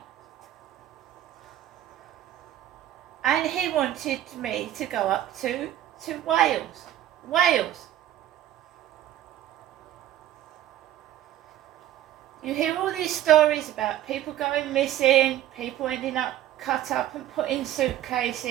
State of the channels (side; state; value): left; quieter; 12.5 dB